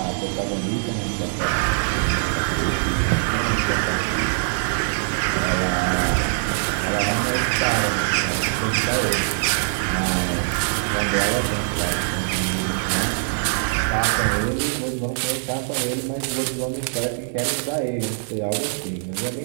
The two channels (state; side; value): silent; left; 64 dB below the other